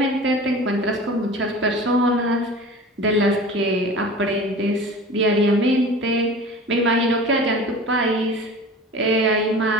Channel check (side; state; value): both; normal; correlation 0.38